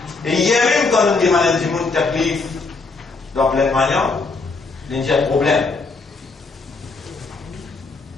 Et hier même quand on demande du monde taklif dans plein de manières, il y a un problème.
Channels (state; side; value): quieter; right; 4.0 dB